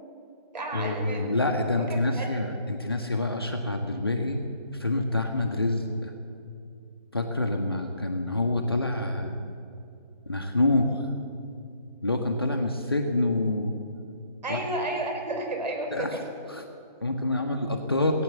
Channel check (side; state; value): both; inverted; correlation -0.65